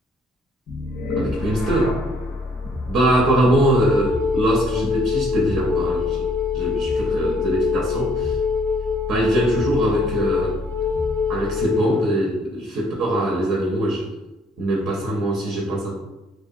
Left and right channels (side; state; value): both; normal; correlation 0.64